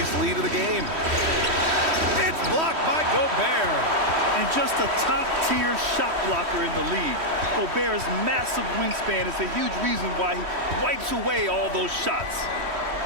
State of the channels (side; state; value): left; late; 3.1 ms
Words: lead of the game. It's blocked by Gobert. And just a top-tier shot blocker in the league. Gobert's massive wingspan is a huge reason why he wipes away all those shots.